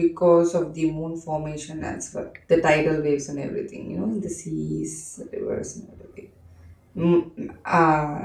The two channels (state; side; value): identical; both; correlation 1.00